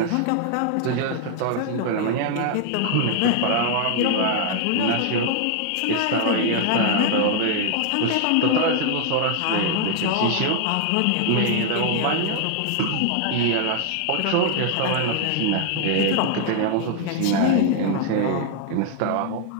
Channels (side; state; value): both; different; correlation 0.00